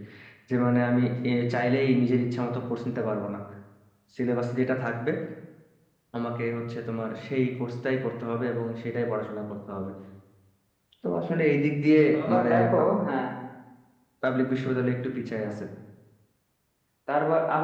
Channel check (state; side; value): identical; both; correlation 1.00